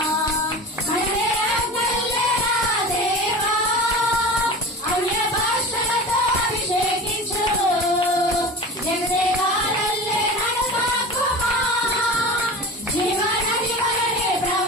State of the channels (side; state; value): both; normal; correlation 0.33